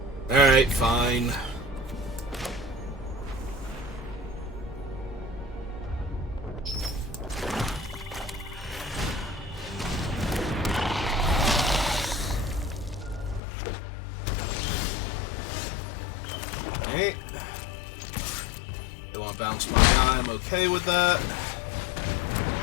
Alright, fine. Alright. They want to bounce my guy, I'm okay with that.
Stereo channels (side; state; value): right; drops out; at 13.4 s